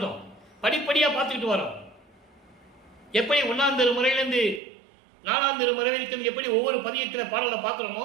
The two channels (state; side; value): drops out; left; at 4.6 s